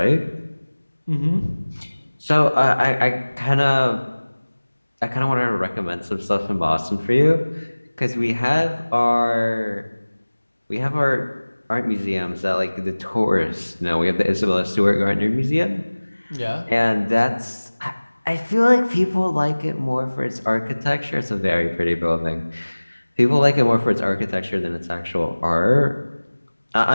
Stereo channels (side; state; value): both; inverted; correlation -1.00